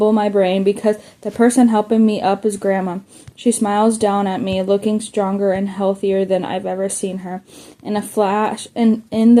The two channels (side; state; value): both; identical; correlation 1.00